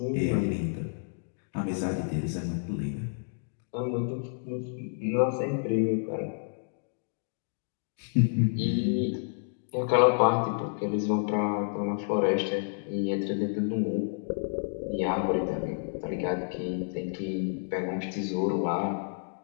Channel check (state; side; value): silent; right; digital silence